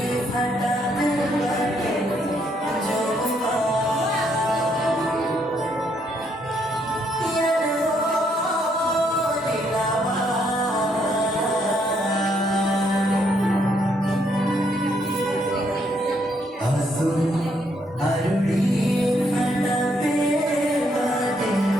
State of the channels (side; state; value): both; normal; correlation 0.72